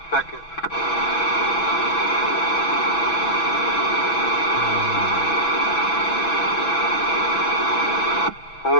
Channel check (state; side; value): late; right; 6.1 ms